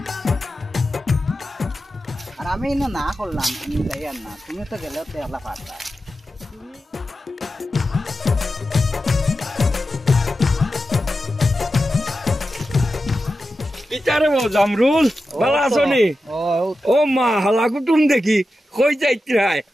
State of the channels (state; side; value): normal; both; correlation 0.91